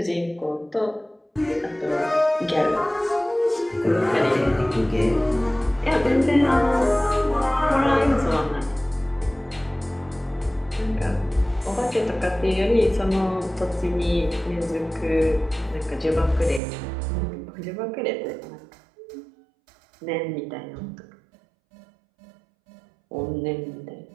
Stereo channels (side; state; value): left; drops out; at 16.6 s